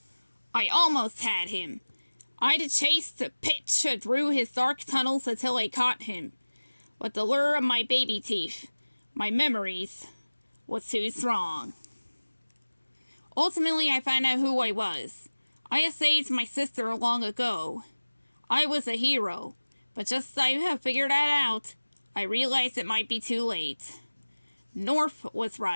I almost had him. I'd chased Pitch through his dark tunnels until I caught him. But the lure of my baby teeth, my memories, was too strong. Ultimately, I found out who I was. I had saved my sister long ago. I was a hero, but just as I have figured that out, I realized it might be too late. North was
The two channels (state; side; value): inverted; both; correlation -1.00